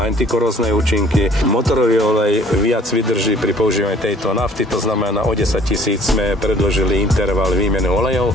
antikorózne účinky. Motorový olej viac vydrží pri používaní tejto nafty, to znamená o 10 000 sme predložili interval výmeny olejov.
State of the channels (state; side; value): normal; both; correlation 0.54